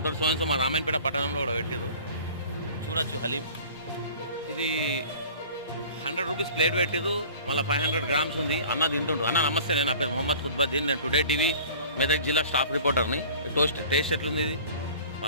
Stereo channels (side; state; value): both; inverted; correlation -0.45